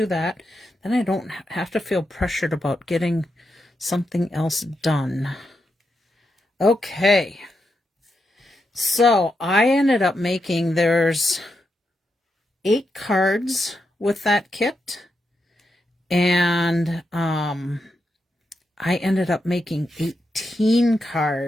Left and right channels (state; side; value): normal; both; correlation 0.85